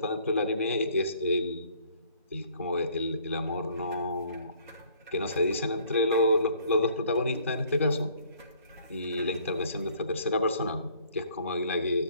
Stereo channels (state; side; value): inverted; both; correlation -0.60